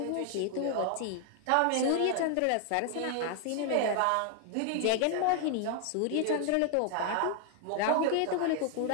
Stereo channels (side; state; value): both; different; correlation 0.00